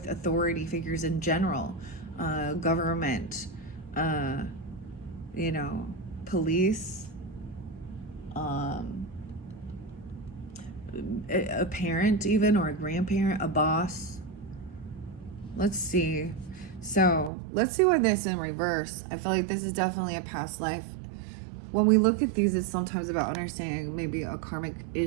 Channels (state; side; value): drops out; left; at 17.3 s